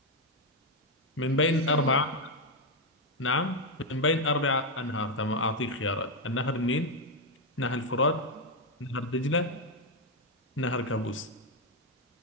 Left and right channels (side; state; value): both; normal; correlation 0.03